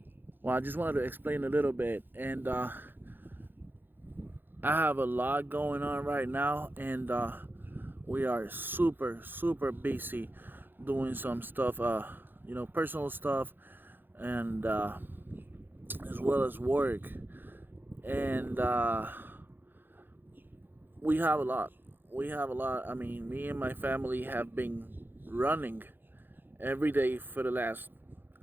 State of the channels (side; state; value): left; late; 0.095 ms